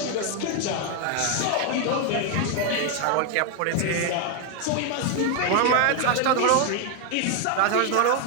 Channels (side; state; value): both; different; correlation 0.01